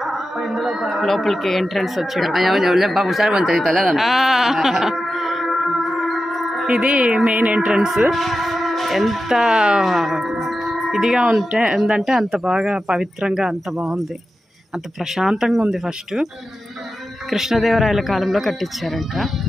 లోపలికి ఎంట్రన్స్ వచ్చాడు. ఇది మెయిన్ ఎంట్రన్స్. ఎంత ఇదిగా ఉందంటే అంత బాగా పవిత్రంగా, అంత బాగుంది, అంత ప్రశాంతంగా ఉంది. ఫస్ట్ కృష్ణదేవరాయల కాలంలో కట్టించారంట.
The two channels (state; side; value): normal; both; correlation 0.92